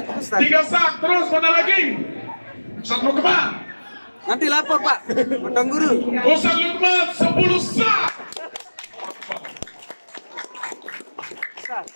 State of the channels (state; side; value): inverted; both; correlation -1.00